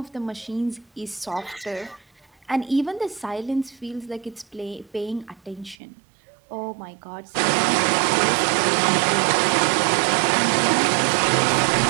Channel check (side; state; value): left; drops out; at 5.8 s